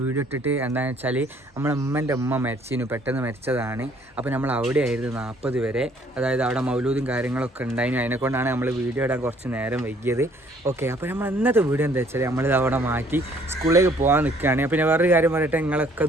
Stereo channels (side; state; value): both; normal; correlation 0.61